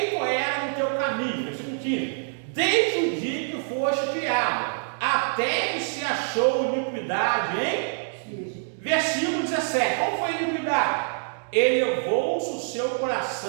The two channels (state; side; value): silent; left; digital silence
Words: era no teu caminho, versículo 15, desde o dia que foste criado, até que se achou iniquidade, hein? Versículo 17, qual foi a iniquidade? Elevou-se o seu